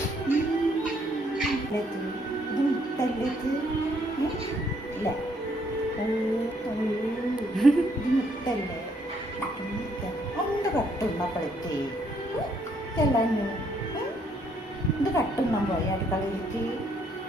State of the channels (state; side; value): normal; both; correlation 0.69